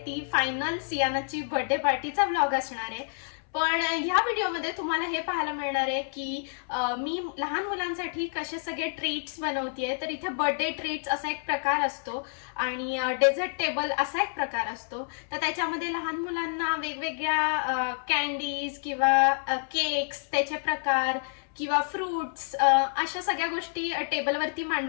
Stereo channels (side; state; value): right; silent; 59 dB below the other